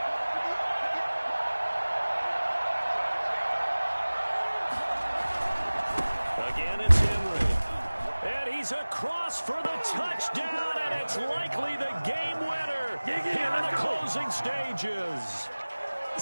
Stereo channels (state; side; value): inverted; both; correlation -1.00